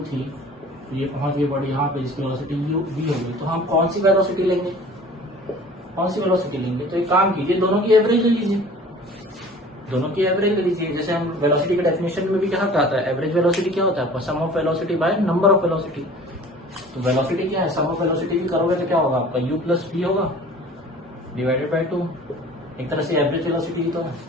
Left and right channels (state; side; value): normal; both; correlation 0.45